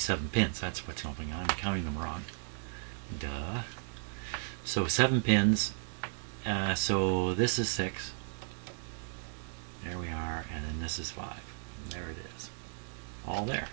pins. That's what's going on. I'm counting them wrong. Duh. So 7 pins. So this is 6. There we are. And then this is 5. And there it is. All there.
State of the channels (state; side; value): silent; left; 55 dB below the other